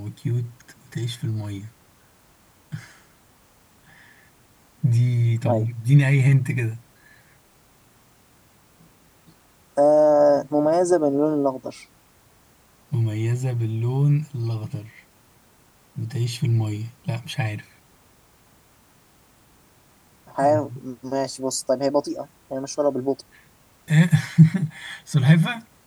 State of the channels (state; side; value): identical; both; correlation 1.00